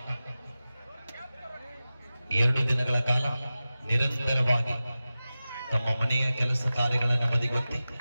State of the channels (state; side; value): inverted; both; correlation -0.95